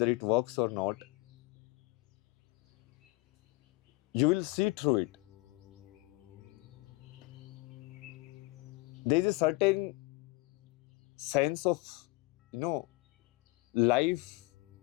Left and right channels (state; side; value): quieter; right; 22.7 dB